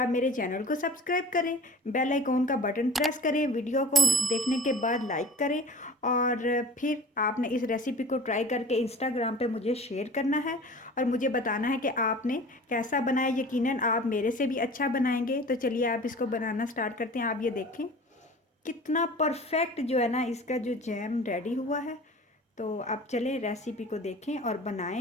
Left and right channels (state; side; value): normal; both; correlation 0.42